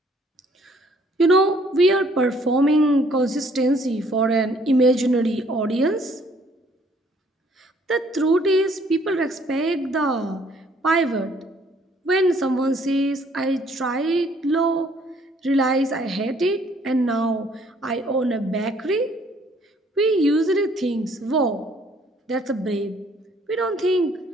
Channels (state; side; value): normal; both; correlation 0.62